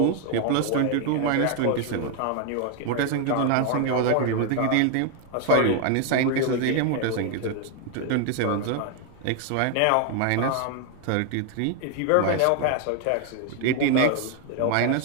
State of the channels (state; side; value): different; both; correlation 0.01